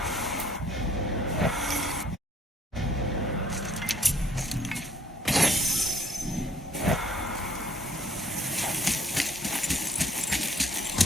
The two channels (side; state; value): both; normal; correlation 0.63